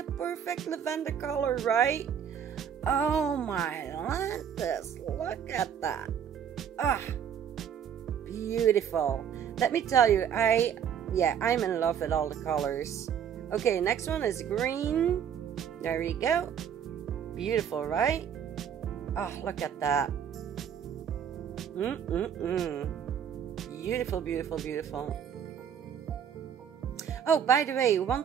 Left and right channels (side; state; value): left; quieter; 8.4 dB